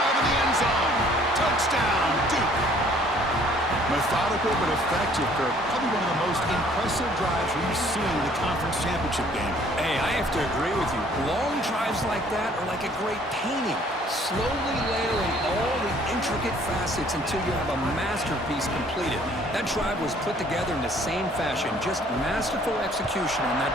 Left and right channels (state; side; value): normal; both; correlation 0.58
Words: in the end zone. Touchdown, Duke. Methodical but effective, Kirk. Probably one of the most impressive drives we've seen in the conference championship game. Hey, I have to agree with you. Long drives like that are like a great painting. Slowly layering all the intricate facets until you have a masterpiece completed. That drive was put together in the same fashion. Just masterful execution on that